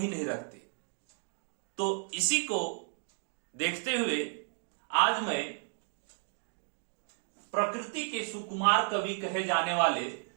नहीं रखते। तो इसी को देखते हुए आज मैं प्रकृति के सुकुमार कवि कहे जाने वाले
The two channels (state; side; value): silent; left; 56 dB below the other